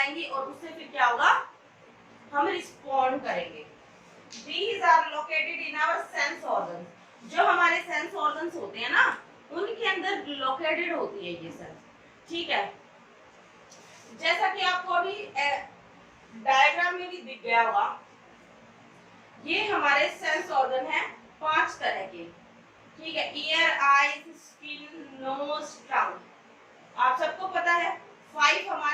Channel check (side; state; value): both; identical; correlation 1.00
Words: और उससे फिर क्या होगा, हम रिस्पॉन्ड करेंगे। These are located in our sense organs। जो हमारे सेंस ऑर्गन्स होते हैं ना, उनके अंदर लोकेटेड होती है ये सेल्स, ठीक है। जैसा कि आपको अभी डायग्राम में भी दिख गया होगा, ये हमारे सेंस ऑर्गन है 5 तरह के, ठीक है। ईयर, आईज, स्किन, नोज, टंग। आप सबको पता है 5